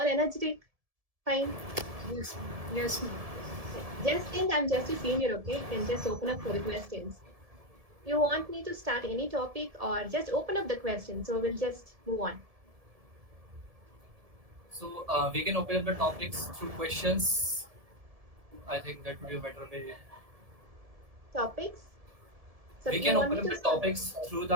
energetic. Fine. Yes, ma'am. Yes, ma'am. Just think I'm just a senior, okay? You can just open up for the questions. You want me to start any topic or just open up the question? So we'll just move on. So we can open up the topics through questions. I think that would be a better way. Topics? So We you can want open me up to the start? topics through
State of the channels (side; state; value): left; late; 1.7 ms